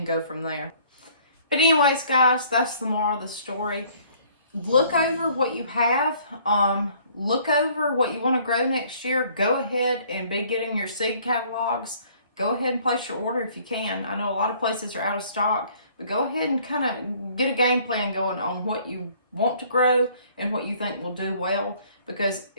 go from there. But anyways, guys, that's the moral of the story. Look over what you have. Look over what you want to grow next year. Go ahead and be getting your seed catalogs. Go ahead and place your order if you can. I know a lot of places are out of stock, but go ahead and kind of get a game plan going on what you want to grow and what you think will do well, because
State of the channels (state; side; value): inverted; both; correlation -0.58